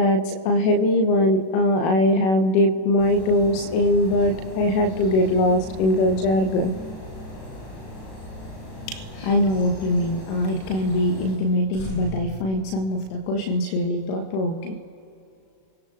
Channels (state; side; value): late; right; 37 ms